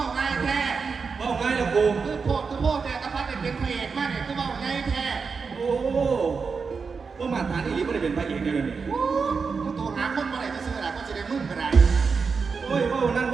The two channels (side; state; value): left; quieter; 5.2 dB